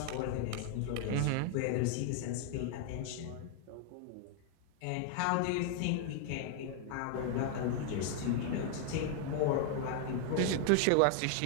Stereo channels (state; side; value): different; both; correlation 0.00